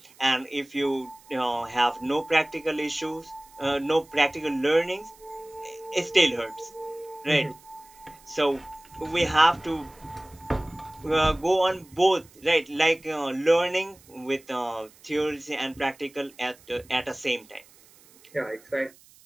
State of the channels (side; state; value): right; noise; hiss, 26 dB below the sound